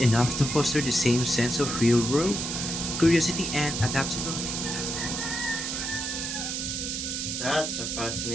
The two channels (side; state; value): right; noise; hiss, 3 dB below the sound